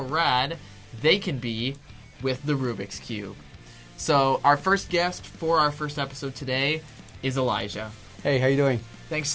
rad they can be with the Rubik's Cube. So our first guest for our first episode today is Elijah. Hey, how you doing? Thanks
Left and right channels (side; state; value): both; identical; correlation 1.00